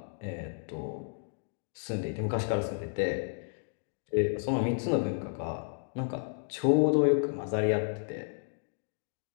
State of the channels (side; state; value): right; silent; digital silence